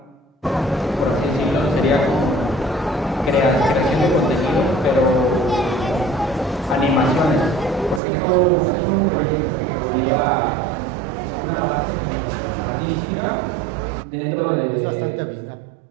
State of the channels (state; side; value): drops out; left; at 8.0 s